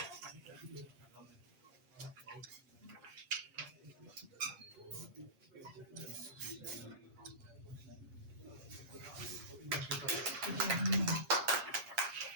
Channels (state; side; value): late; left; 8.5 ms